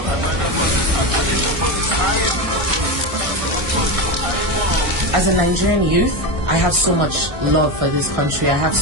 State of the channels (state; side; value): late; left; 1.6 ms